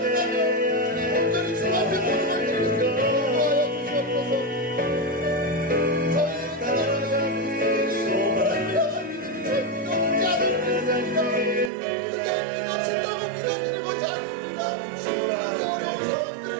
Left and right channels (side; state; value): left; drops out; at 11.7 s